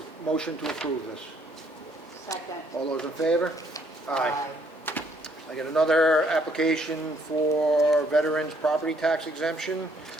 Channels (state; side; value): normal; both; correlation 0.66